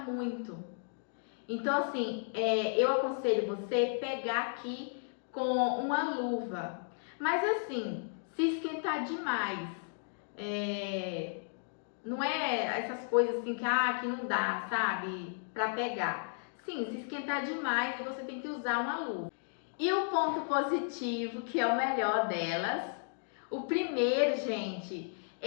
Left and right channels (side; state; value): right; silent; digital silence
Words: Então, assim, eu aconselho você pegar aqui com uma luva. Mas assim, se esquentar demais, não é essas coisas assim que não dá, sabe? Pra pegar. Sim, se esquentar demais, você tem que usar uma luva. E o ponto positivo, que é o melhor delas, o primeiro, gente,